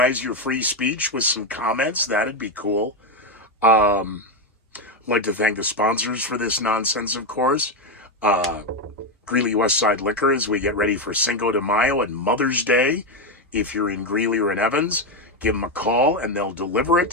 your free speech with some comments, that'd be cool. I'd like to thank the sponsors for this nonsense, of course. Greeley Westside Liquor as we get ready for Cinco de Mayo and Mother's Day. If you're in Greeley or in Evans, give them a call and they'll deliver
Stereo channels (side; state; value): both; normal; correlation 0.08